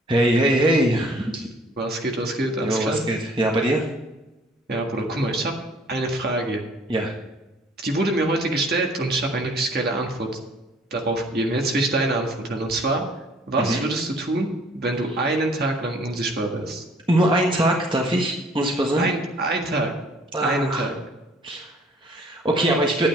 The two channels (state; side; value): normal; both; correlation 0.57